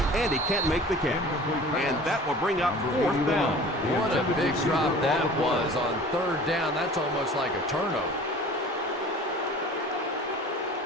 And he can't make the kick. And that will bring up 4th down. What a big drop that was on 3rd down. That's almost like a turnover.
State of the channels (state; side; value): normal; both; correlation 0.43